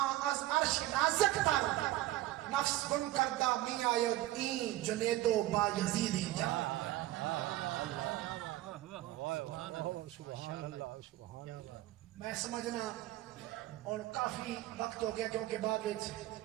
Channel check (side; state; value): left; quieter; 16.0 dB